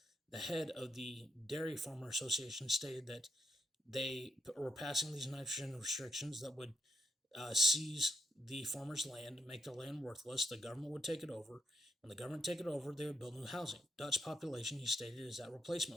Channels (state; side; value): normal; both; correlation 0.79